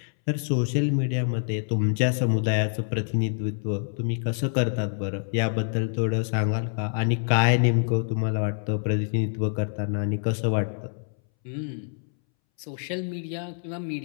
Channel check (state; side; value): silent; right; 61 dB below the other